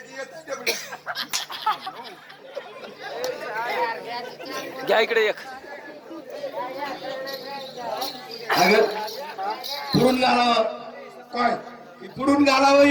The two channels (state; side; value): identical; both; correlation 1.00